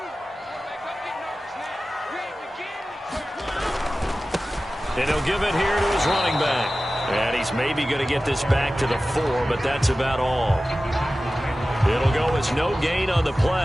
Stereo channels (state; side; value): normal; both; correlation 0.95